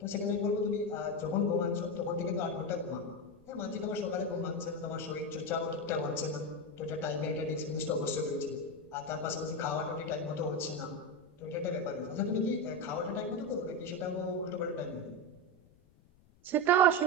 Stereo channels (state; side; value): noise; left; rumble, 29 dB below the sound